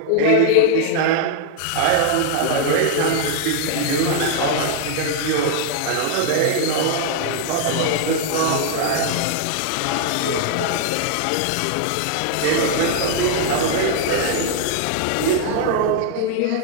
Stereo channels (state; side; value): different; both; correlation 0.00